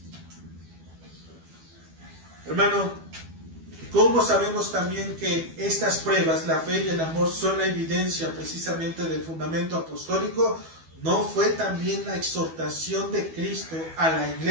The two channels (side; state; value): left; late; 12 ms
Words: Hermano, ¿cómo sabemos también que estas pruebas, la fe y el amor, son la evidencia precisamente del fundamento apostólico? ¿No fue también la exhortación de Cristo a la